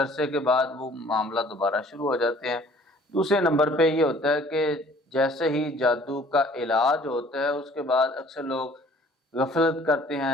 کے بعد وہ معاملہ دوبارہ شروع ہو جاتے ہیں۔ دوسرے نمبر پہ یہ ہوتا ہے کہ جیسے ہی جادو کا علاج ہوتا ہے اس کے بعد اکثر لوگ غفلت کرتے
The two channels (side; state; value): both; normal; correlation 0.54